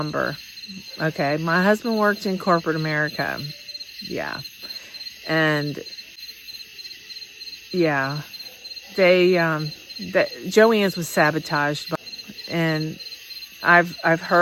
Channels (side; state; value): both; identical; correlation 1.00